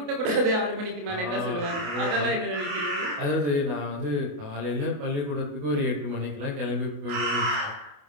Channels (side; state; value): left; late; 28 ms